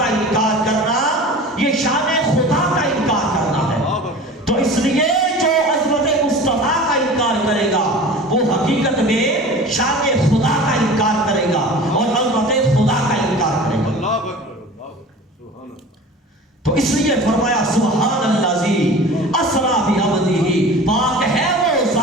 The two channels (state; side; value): normal; both; correlation 0.38